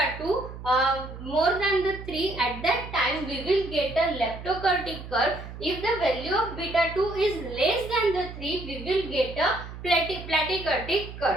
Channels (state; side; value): noise; right; hum, 12 dB below the sound